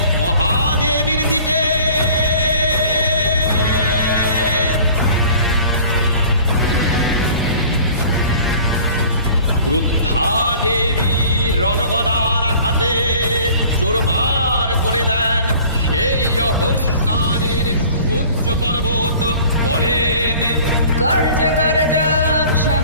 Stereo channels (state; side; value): inverted; both; correlation -0.48